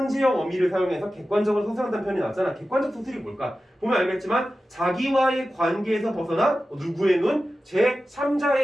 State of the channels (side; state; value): both; normal; correlation 0.94